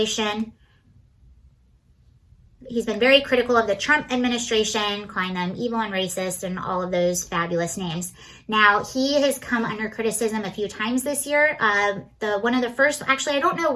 He's been very critical of the Trump administration, calling them evil and racist and all of those fabulous names. Now, he has come under criticism a few times this year. One of the first, actually, I don't know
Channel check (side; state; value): both; identical; correlation 1.00